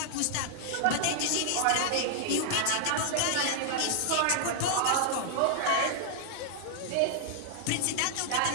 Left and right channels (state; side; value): different; both; correlation -0.01